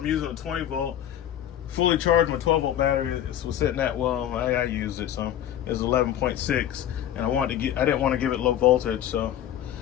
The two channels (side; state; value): right; quieter; 11.1 dB